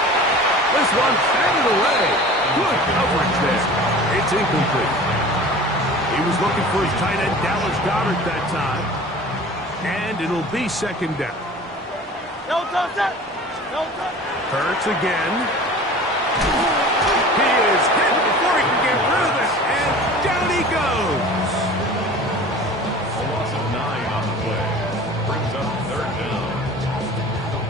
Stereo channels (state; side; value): normal; both; correlation 0.41